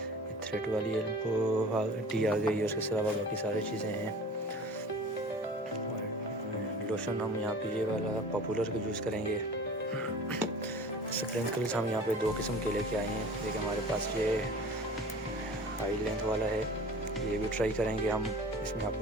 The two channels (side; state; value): both; normal; correlation 0.42